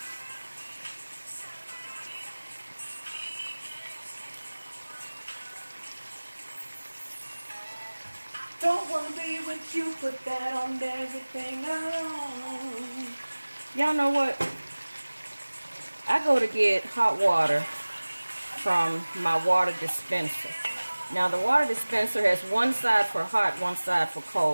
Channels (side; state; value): both; inverted; correlation -1.00